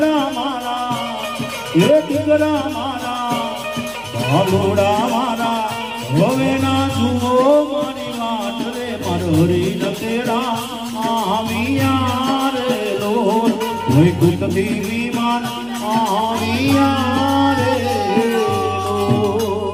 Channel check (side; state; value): right; noise; hum, 26 dB below the sound